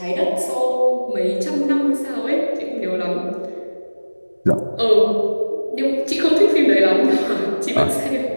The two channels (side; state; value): both; inverted; correlation -1.00